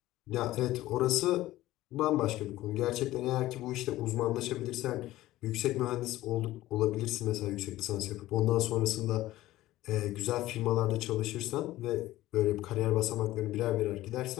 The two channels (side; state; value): right; quieter; 16.0 dB